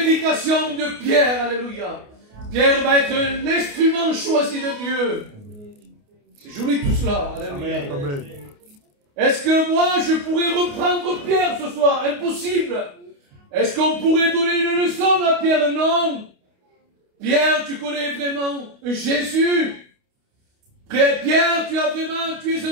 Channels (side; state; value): left; late; 28 ms